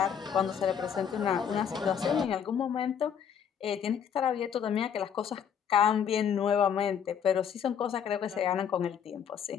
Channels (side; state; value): right; quieter; 8.0 dB